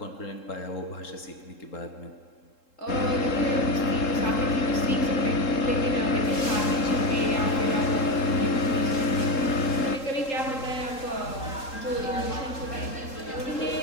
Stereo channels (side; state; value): right; late; 3.7 ms